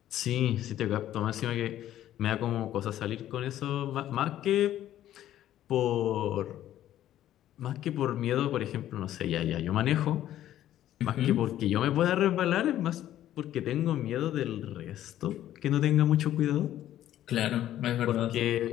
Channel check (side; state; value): right; quieter; 12.5 dB